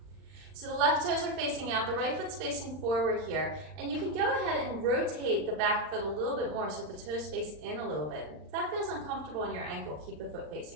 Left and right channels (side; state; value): left; late; 39 ms